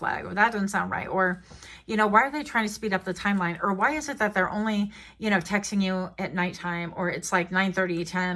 or that doesn't sound right. Or, you know, why are they trying to speed up the timeline? Or why is it that they're only, you know, texting you at nighttime, or it's like 9:30, 10,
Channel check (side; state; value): both; identical; correlation 1.00